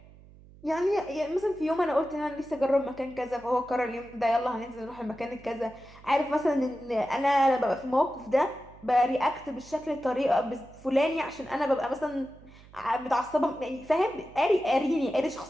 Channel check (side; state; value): right; noise; hum, 22 dB below the sound